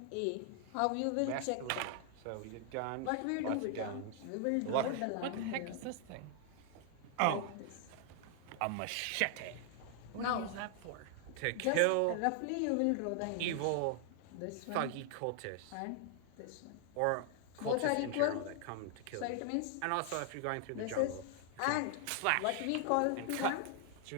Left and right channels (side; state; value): both; different; correlation 0.00